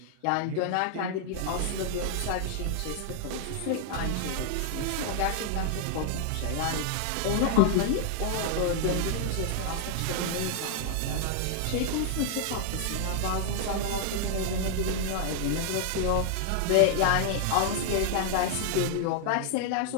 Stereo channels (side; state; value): both; different; correlation -0.01